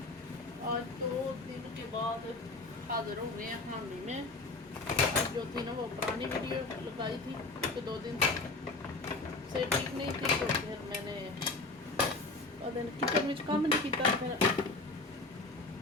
आज 2 दिन के बाद हाजिर हो गए हैं हामी में। जो थी ना वो पुरानी वीडियो लगाई थी कि 2 दिन से ठीक नहीं थी, तो फिर मैंने किचन में काम नहीं किया। फिर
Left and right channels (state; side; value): quieter; right; 3.3 dB